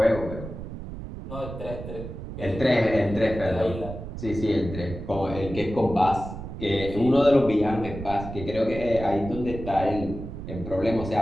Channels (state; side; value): noise; right; rumble, 9 dB below the sound